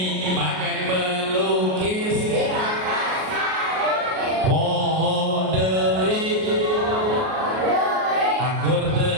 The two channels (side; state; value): left; late; 38 ms